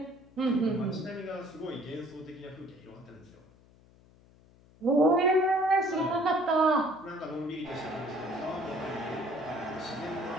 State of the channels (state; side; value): noise; left; hum, 27 dB below the sound